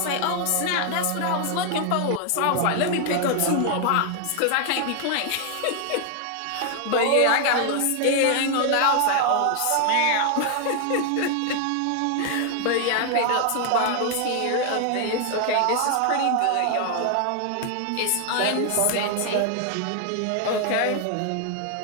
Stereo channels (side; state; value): both; different; correlation 0.00